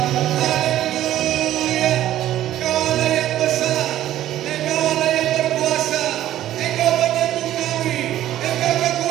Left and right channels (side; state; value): left; quieter; 13.0 dB